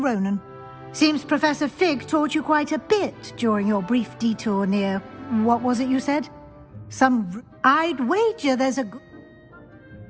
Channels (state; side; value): identical; both; correlation 1.00